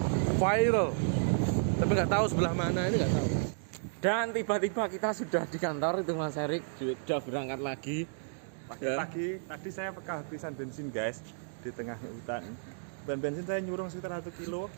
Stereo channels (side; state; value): left; silent; digital silence